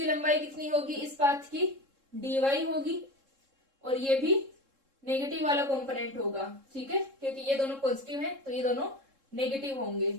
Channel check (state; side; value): late; left; 3.7 ms